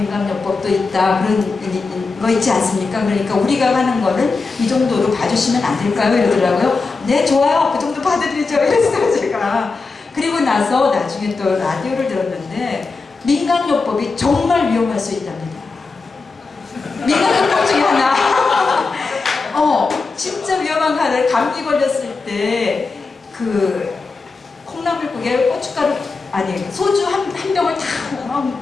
있다, 그런 거 있지 않습니까? 그러니까 우리가 하는 거는 이 정도로 봐주시면 안 될까요? 이러더라고요. 네, 좋아요. 그 정도 봐드리죠. 이랬어요, 제가. 그리고 나서 나중에 또 라디오를 들었는데, 민간요법이 정말 위험할 수 있답니다. 민간요법 중에 하나. 진짜 위험한 거를, 감기 걸렸을 때 콩나물국에 고춧가루, 소주 한 병을 다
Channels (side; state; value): right; quieter; 4.2 dB